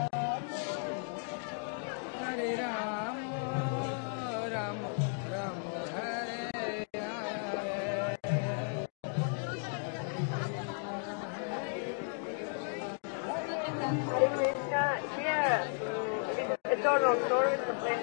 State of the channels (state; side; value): silent; right; 55 dB below the other